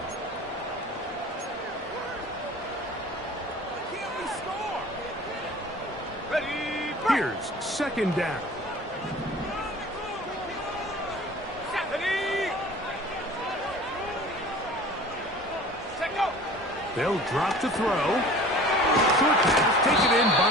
Can't we score? Ready. Here's 2nd down. They'll drop to throw. Short pass taken in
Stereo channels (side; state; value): both; normal; correlation 0.43